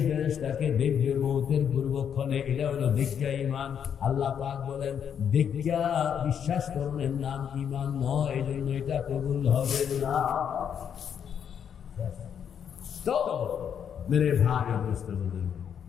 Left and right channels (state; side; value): quieter; right; 8.2 dB